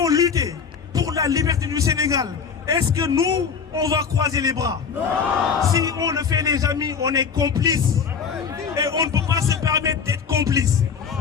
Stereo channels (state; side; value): quieter; right; 6.3 dB